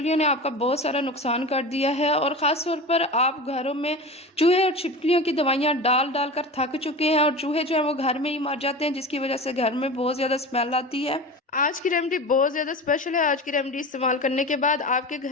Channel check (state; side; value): normal; both; correlation 0.30